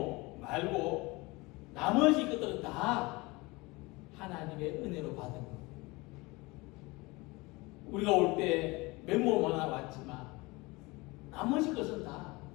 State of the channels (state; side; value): quieter; right; 23.7 dB